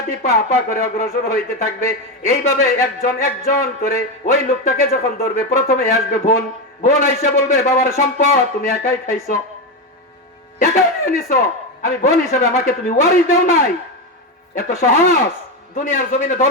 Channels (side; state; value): both; normal; correlation 0.13